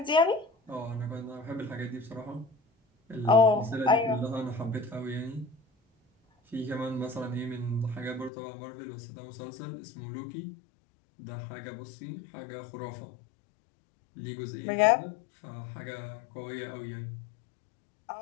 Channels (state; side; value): drops out; right; at 8.3 s